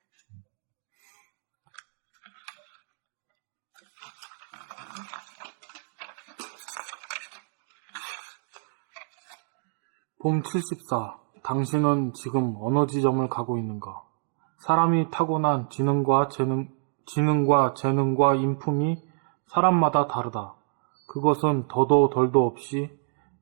봄 74. 당신은 지금 어느 지점을 가고 있는가? 사람이 타고난 지능과 재능과 인품이 사람마다 다르다. 그것은 더도 덜도 없이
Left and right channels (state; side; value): silent; left; digital silence